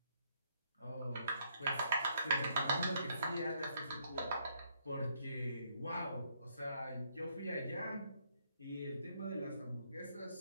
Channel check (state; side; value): inverted; both; correlation -0.72